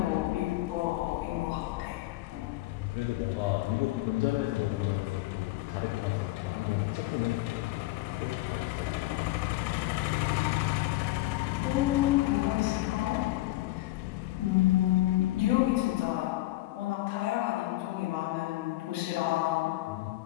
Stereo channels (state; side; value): quieter; right; 17.9 dB